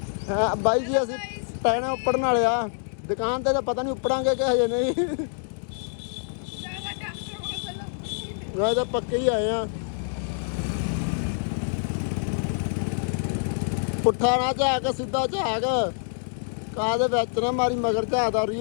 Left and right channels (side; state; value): right; silent; digital silence